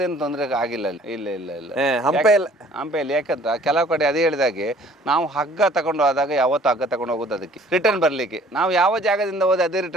ತೊಂದರೆ ಆಗಿಲ್ಲ ಅಲ್ಲಿ. ಇಲ್ಲ ಹಂಪೆಯಲ್ಲಿ ಯಾಕಂತ ಕೆಲವು ಕಡೆ ಅದೇ ಹೇಳಿದಾಗೆ ನಾವು ಹಗ್ಗ ತಗೊಂಡು ಹೋದಾಗ ಯಾವತ್ತು ಹಗ್ಗ ತಗೊಂಡು ಹೋಗೋದು ಅದಕ್ಕೆ ರಿಟರ್ನ್ ಬರ್ಲಿಕ್ಕೆ. ನಾವು ಯಾವ ಜಾಗದಿಂದ ಹೋದ್ರೆ ಅದೇ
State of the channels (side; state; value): both; normal; correlation 0.54